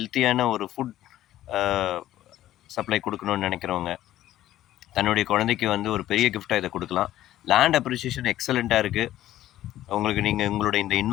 ஒரு ஃபுட் சப்ளை கொடுக்கணும்னு நினைக்கிறவங்க, தன்னுடைய குழந்தைக்கு வந்து ஒரு பெரிய கிஃப்டாக இதை கொடுக்கலாம். லேண்ட் அப்ரிசியேஷன் எக்ஸலண்ட்டாக இருக்குது. உங்களுக்கு உங்களுடைய இந்த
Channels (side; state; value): right; quieter; 13.5 dB